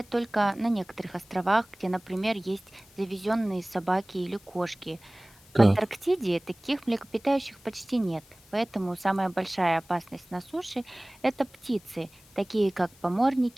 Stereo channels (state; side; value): noise; left; hiss, 27 dB below the sound